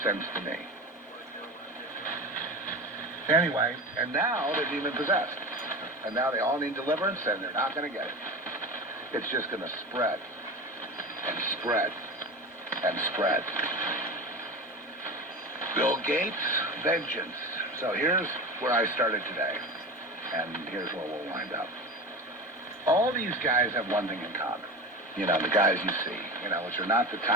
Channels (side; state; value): both; normal; correlation 0.28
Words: sense to me. Anyway, and now they're demon-possessed. And now they all need deliverance, and they're not going to get it. It's just going to spread and spread and spread. Bill Gates, vengeance. So here's where I started today, and here's where we'll wind up. All these guys have one thing in common. You know, the guys you see, you know, which are not the